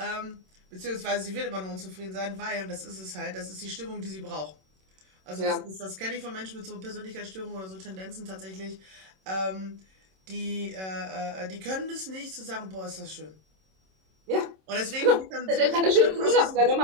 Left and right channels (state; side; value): late; left; 26 ms